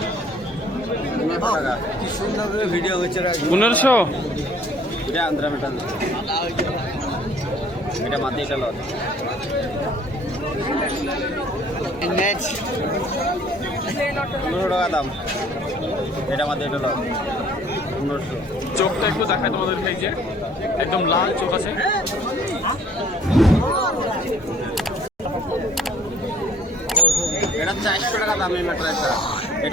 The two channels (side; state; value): both; normal; correlation 0.55